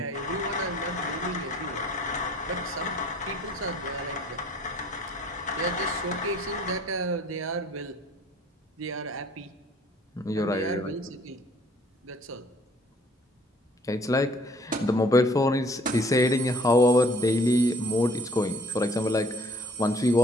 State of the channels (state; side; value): normal; both; correlation 0.57